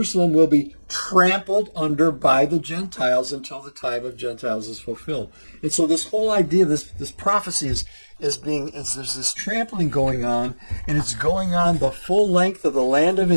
will be trampled under by the Gentiles until the time of Gentiles is fulfilled. And so this whole idea, this prophecy is there's this trampling going on, and it's going on the full length of the land of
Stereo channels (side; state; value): both; inverted; correlation -1.00